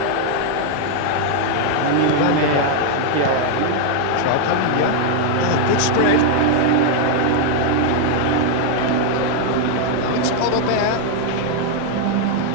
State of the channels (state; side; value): different; both; correlation 0.00